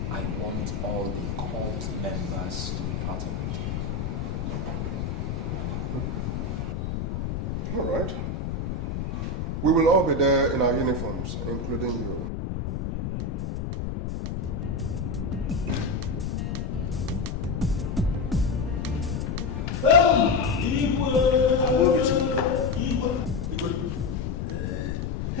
I want all the cult members to be part of it. All right. We will all be there in our uniforms, including you.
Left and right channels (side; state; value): left; noise; rumble, 3 dB below the sound